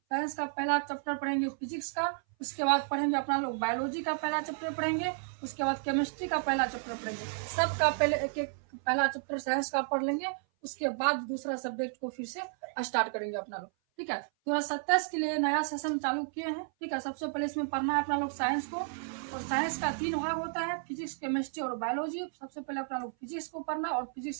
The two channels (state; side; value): silent; left; 56 dB below the other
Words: का पहला चैप्टर पढ़ेंगे फिजिक्स का, उसके बाद पढ़ेंगे अपना लोग बायोलॉजी का पहला चैप्टर पढ़ेंगे, उसके बाद केमिस्ट्री का पहला चैप्टर पढ़ेंगे। सबका पहले एक एक पहला चैप्टर साइंस का पढ़ लेंगे, उसके बाद दूसरा सब्जेक्ट को फिर से स्टार्ट करेंगे अपना लोग। ठीक है, 2027 के लिए नया सेशन चालू किए हैं। ठीक है, सबसे पहले इसमें पढ़ना है अपना लोग साइंस को। और साइंस का 3 भाग होता है, फिजिक्स, केमिस्ट्री और बायोलॉजी। सबसे पहले अपना लोग फिजिक्स को पढ़ना, और